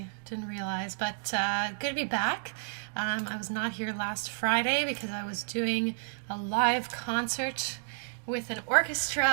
didn't realize, but good to be back. I was not here last Friday because I was doing a live concert with an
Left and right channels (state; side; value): silent; left; digital silence